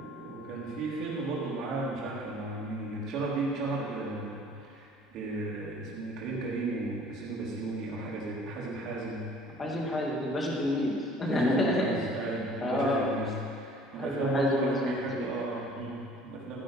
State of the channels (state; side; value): normal; both; correlation 0.52